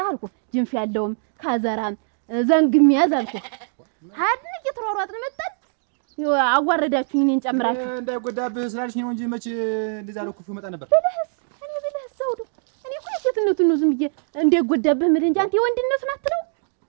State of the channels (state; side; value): silent; left; digital silence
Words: አልኩ። ጅንፍ ያለውም ካዘራም ዘንግም ያዝ አልኩ። ሀድን እየተሯሯጥን መጣን። አዋረዳችሁኝ እኔን ጨምራችሁ። እንዳይጎዳብህ ስላልሽ ነው እንጂ መች እንደዛ ነው ክፉ መጣ ነበር። ብለህስ ዘውዱ እኔ እኮ የሴትነቱን ነው ዝም ብዬ እንዳይጎዳብህ የምልህ እንጂ አንተ የወንድነቱን አትለው።